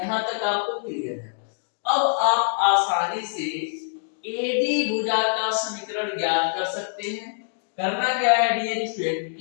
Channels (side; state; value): right; silent; digital silence